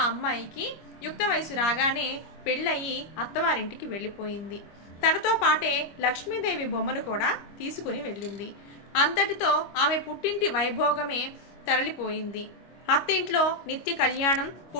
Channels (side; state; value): right; late; 25 ms